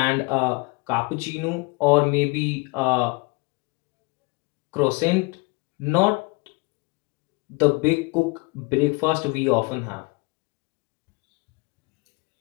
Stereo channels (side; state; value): right; quieter; 27.6 dB